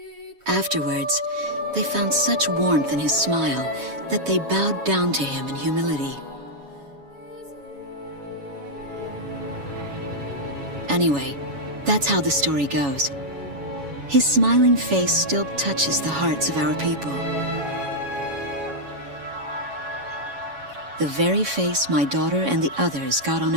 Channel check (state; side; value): late; left; 7.2 ms